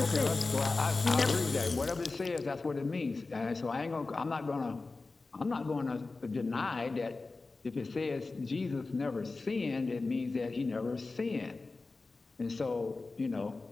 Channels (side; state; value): right; quieter; 3.7 dB